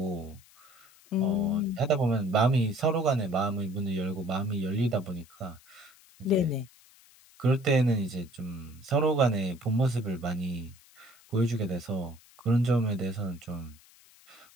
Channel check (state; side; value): noise; left; hiss, 26 dB below the sound